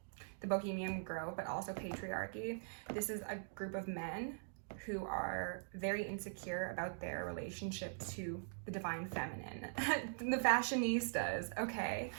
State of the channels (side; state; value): left; silent; digital silence